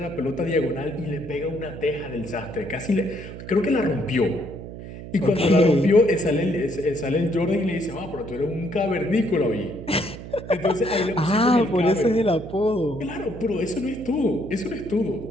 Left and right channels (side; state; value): right; noise; hum, 12 dB below the sound